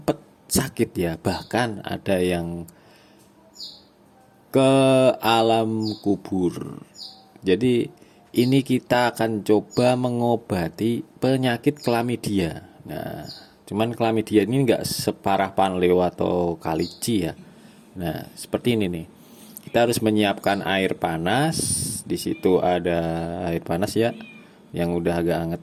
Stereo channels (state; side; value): identical; both; correlation 1.00